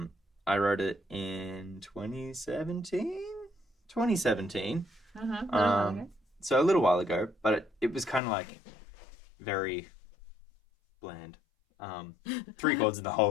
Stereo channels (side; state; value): right; drops out; at 8.2 s